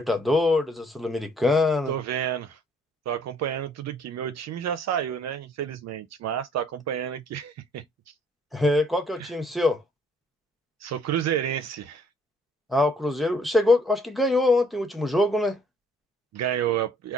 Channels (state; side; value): normal; both; correlation 0.62